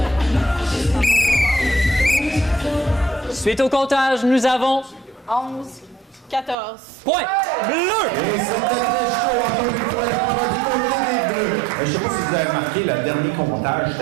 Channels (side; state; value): left; drops out; at 6.6 s